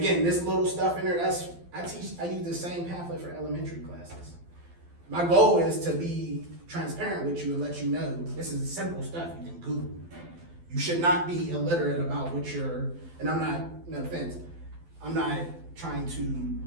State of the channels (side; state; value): left; late; 12 ms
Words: this little stuff in there, I use the same pamphlet for elementary classes. My goal is to be transparent with you and let you know, this is simple stuff you can Google. You should not be illiterate about and I'm not, no offense, I'm not trying to